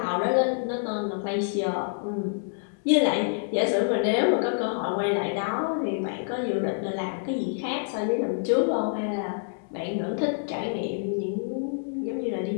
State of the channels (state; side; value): silent; right; 60 dB below the other